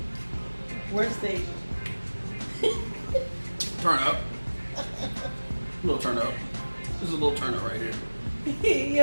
Worst date. Turn up. A little turn up. This is a little turn up right here. He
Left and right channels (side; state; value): both; inverted; correlation -1.00